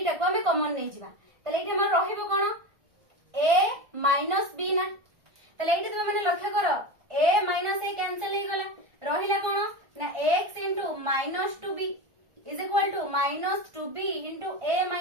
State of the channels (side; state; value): left; late; 1.5 ms